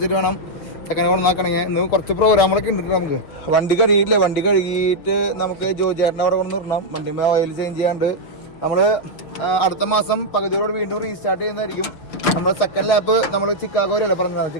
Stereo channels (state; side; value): late; right; 6.4 ms